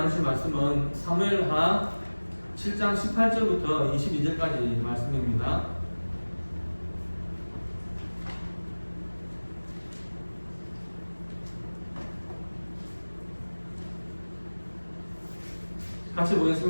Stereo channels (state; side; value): inverted; both; correlation -1.00